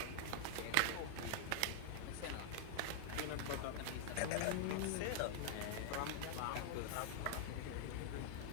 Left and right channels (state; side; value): different; both; correlation -0.01